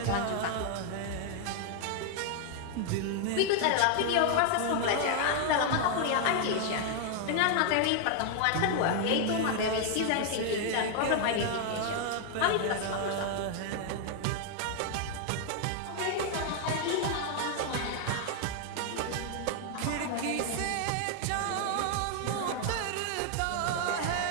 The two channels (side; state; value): both; different; correlation 0.00